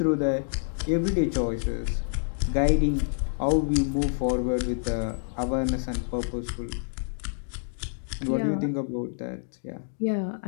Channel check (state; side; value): silent; right; digital silence